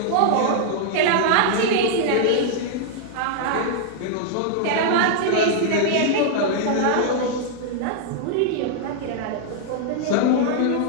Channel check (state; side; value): different; both; correlation -0.01